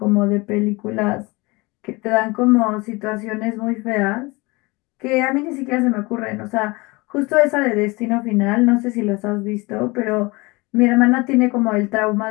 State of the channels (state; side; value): quieter; right; 24.6 dB